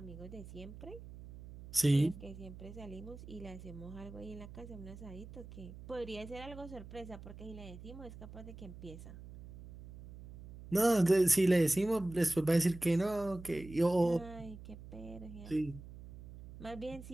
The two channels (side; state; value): right; noise; hum, 15 dB below the sound